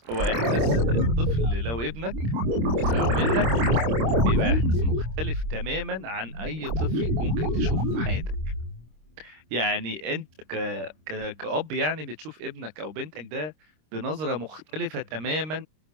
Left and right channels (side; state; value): left; late; 26 ms